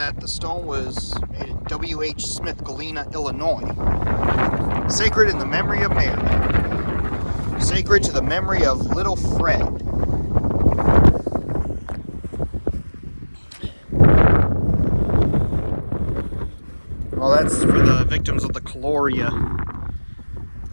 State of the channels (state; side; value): inverted; both; correlation -1.00